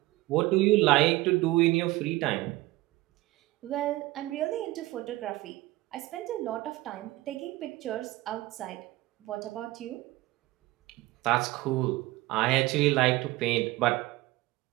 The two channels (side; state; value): left; quieter; 18.8 dB